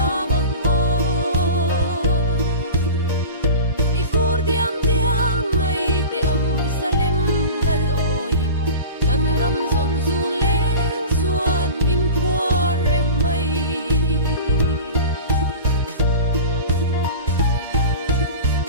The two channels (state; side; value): inverted; both; correlation -0.31